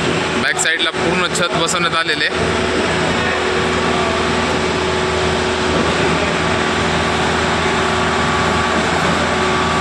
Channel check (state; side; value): identical; both; correlation 1.00